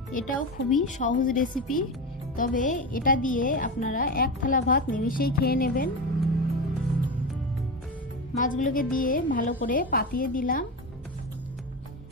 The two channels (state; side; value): normal; both; correlation 0.20